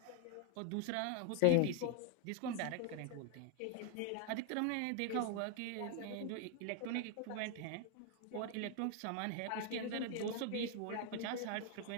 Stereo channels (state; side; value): different; both; correlation 0.01